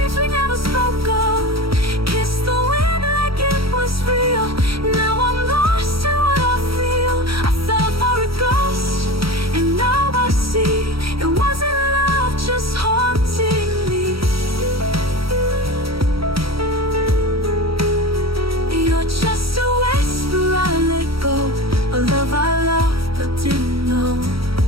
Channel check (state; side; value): late; left; 0.75 ms